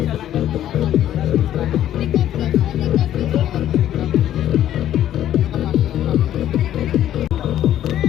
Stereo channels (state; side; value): quieter; right; 11.7 dB